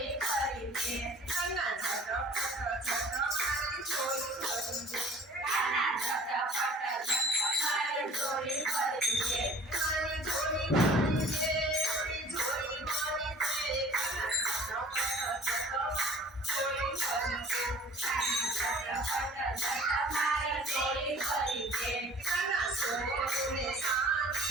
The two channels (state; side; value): normal; both; correlation 0.48